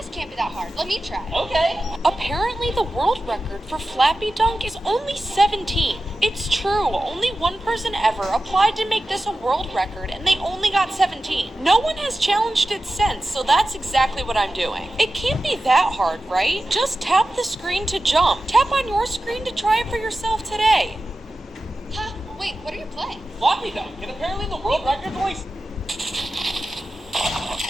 can't be that hard. Let me try. Okay. Apparently the world record for Flappy Dunk is only 17. It's true, only one person ever applied to make this a world record and they only got 17. No one has challenged it since, so that's exactly what I'm doing. It can't be that hard, right? Just tap the screen to jump. Tap on your screen to try it for yourself today. Huh? Wait, what are you playing? Floppy dunk, and apparently the world record's only...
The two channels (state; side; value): normal; both; correlation 0.93